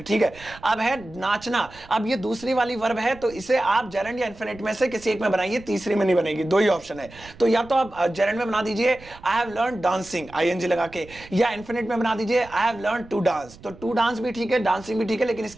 है। अब है नाचना, अब ये दूसरी वाली वर्ब है, तो इसे आप जेरेंड या इन्फिनिट में से किसी एक में बनाइए, तीसरी में नहीं बनेगी, दो ही ऑप्शन है। तो या तो आप जेरेंड में बना दीजिए I have learn dancing, ING लगा के, या इन्फिनिट में बना दीजिए I have learn to dance. तो टू डांस भी ठीक है, डांसिंग भी ठीक है, लेकिन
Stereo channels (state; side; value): noise; right; rumble, 21 dB below the sound